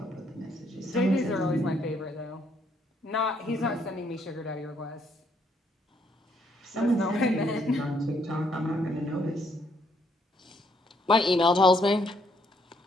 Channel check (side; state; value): both; normal; correlation 0.71